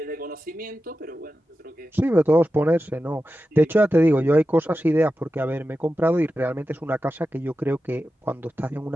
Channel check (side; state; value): both; normal; correlation 0.92